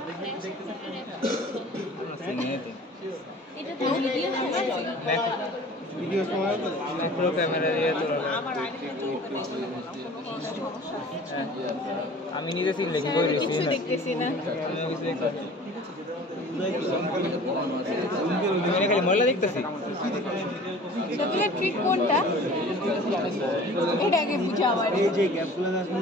ভিডিও সময় ম্যাক্রো ক্যামেরা দিয়ে তো আমি নিজে সিন লেখি কই রেছি না, দেখতেছি না। আমি কিছু দেখতেছি আমি খালি ময়লা দেখতেছি। সবগুলো ট্রিক কোনটা? এটা আগে বুঝা আমার। এই যে গ্যাপগুলো আছে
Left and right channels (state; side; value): normal; both; correlation 0.45